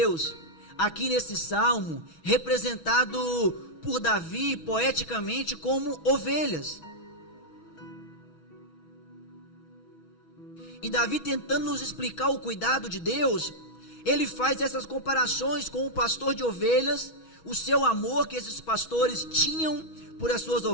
aqui nesse salmo, representado por Davi poeticamente como ovelhas. E Davi, tentando nos explicar o cuidado de Deus, ele faz essas comparações com o pastor de ovelhas, o seu amor que esses pastores tinham por as suas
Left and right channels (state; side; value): late; right; 6.2 ms